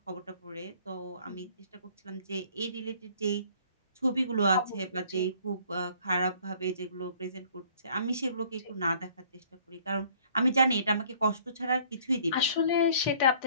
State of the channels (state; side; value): inverted; both; correlation -0.57